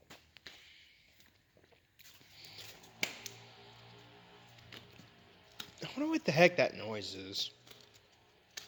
I wonder what the heck that noise is. I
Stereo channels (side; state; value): both; identical; correlation 1.00